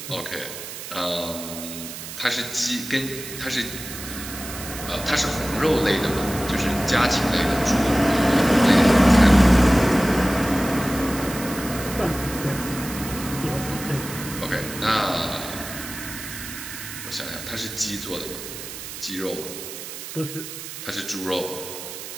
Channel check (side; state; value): right; noise; hiss, 10 dB below the sound